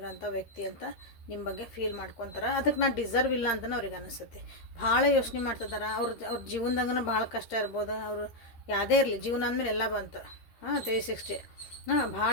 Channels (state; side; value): late; right; 13 ms